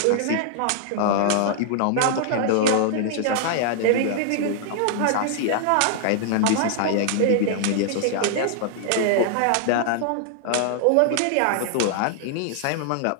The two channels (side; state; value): both; different; correlation -0.01